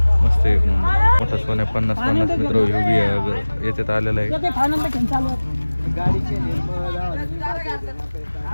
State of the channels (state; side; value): inverted; both; correlation -1.00